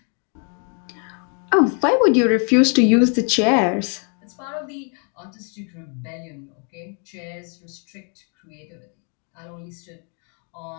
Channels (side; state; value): right; quieter; 39.4 dB